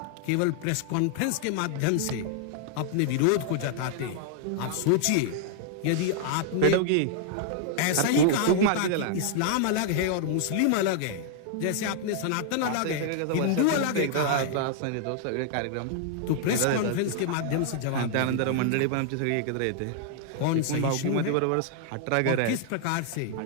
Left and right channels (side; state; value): both; different; correlation 0.00